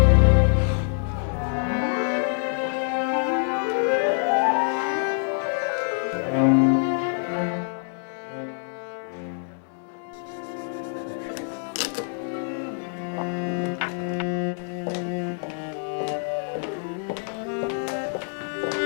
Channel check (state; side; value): silent; right; 61 dB below the other